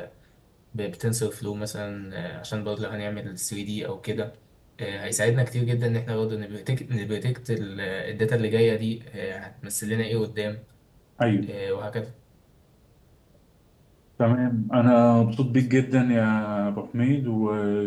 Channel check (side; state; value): both; identical; correlation 1.00